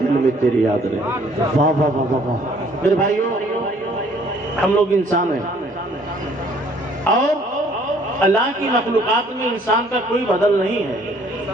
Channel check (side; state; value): both; normal; correlation 0.59